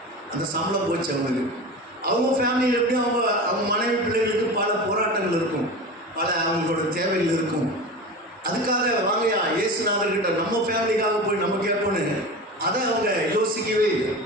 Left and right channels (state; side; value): normal; both; correlation 0.30